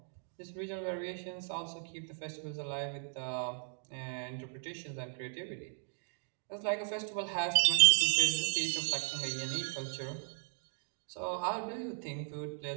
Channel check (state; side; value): silent; left; digital silence